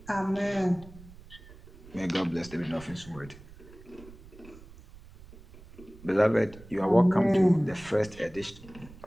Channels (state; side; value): noise; right; rumble, 20 dB below the sound